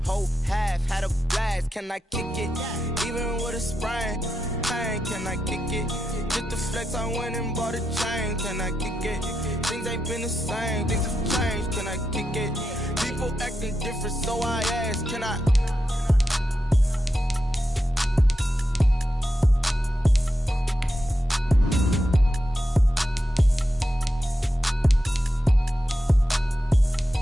whole half, had a blast. Can I kick it? Even with a sprain. Pain. Can I kick it? Just the flex, I went and bought a chain. Can I kick it? Things ain't been the same. Things have changed. Can I kick it? People acting different, so I ask. Can I?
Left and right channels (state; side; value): normal; both; correlation 0.87